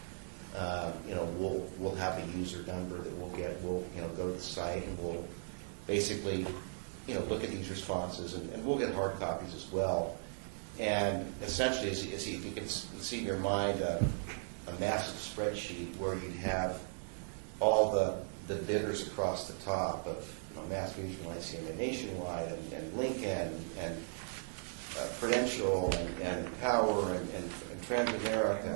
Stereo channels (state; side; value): silent; left; 53 dB below the other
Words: You know, we'll have a user number that we'll get. We'll, you know, go to the site and we'll basically, you know, look at these responses, and we'll get hard copies as well. And essentially, as you can see in your mind, a massive spreadsheet where you'd have all the bidders across the top of, you know, Mass Mutual, ICM, Nationwide, and Lincoln, and Prudential, and Power, and